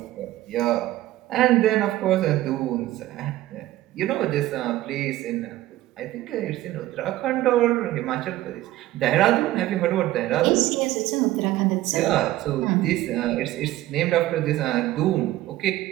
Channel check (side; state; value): left; quieter; 15.7 dB